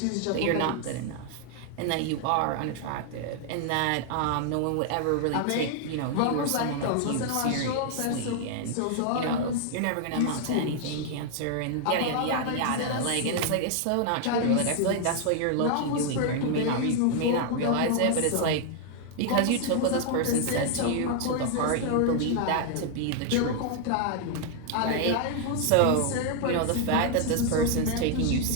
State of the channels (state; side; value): different; both; correlation 0.00